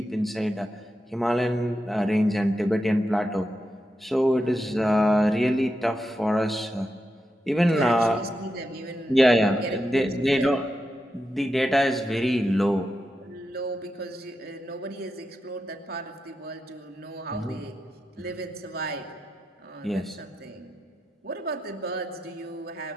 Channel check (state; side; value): normal; both; correlation 0.87